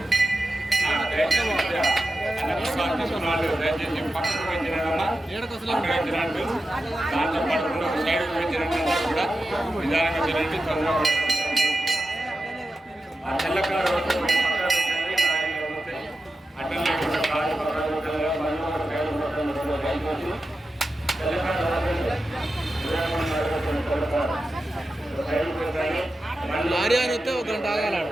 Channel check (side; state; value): both; normal; correlation 0.92